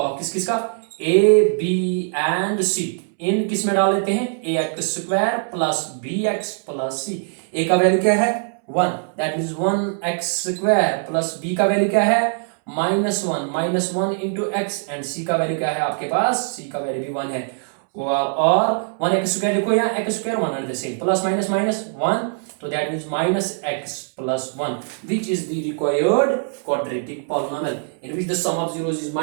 किसका, a b एंड c इन किस में डाल लेते हैं, ax square plus bx plus c। a का वैल्यू क्या है 1, that means 1x square, plus b का वैल्यू क्या है -1 इंटू x, एंड c का वैल्यू क्या है आपके पास, c का वैल्यू भी 1 है, और 1x स्क्वायर लिखो या x square, 1 at the same, plus minus minus 1, तो that means -x plus 1, which is the required quadratic polynomial in which the sum of zeros is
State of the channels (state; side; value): silent; left; 64 dB below the other